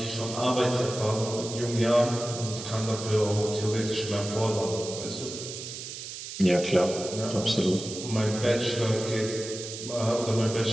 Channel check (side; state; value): right; noise; hiss, 9 dB below the sound